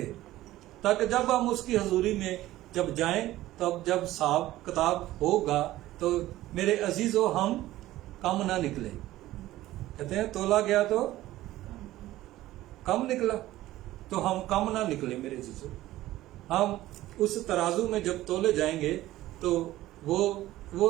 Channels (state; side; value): quieter; left; 15.7 dB